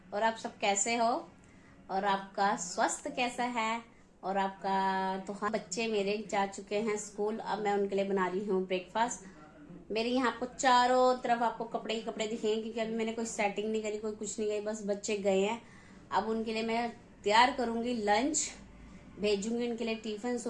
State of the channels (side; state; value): both; identical; correlation 1.00